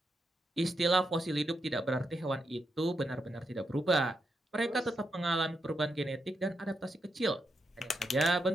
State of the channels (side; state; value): both; normal; correlation 0.83